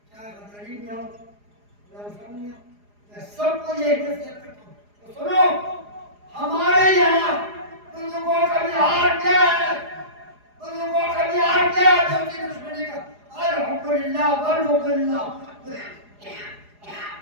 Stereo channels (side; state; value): left; late; 4.9 ms